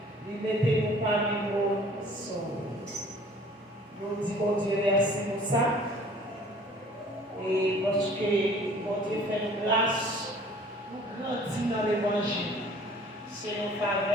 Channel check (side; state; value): both; normal; correlation 0.52